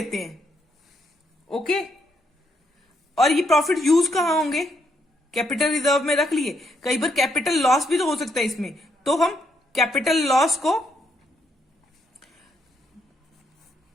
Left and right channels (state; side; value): normal; both; correlation 0.76